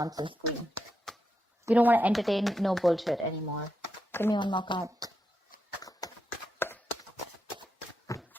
queen. You don't want to entertain no bullshit anymore. Give me one more card.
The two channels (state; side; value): normal; both; correlation 0.84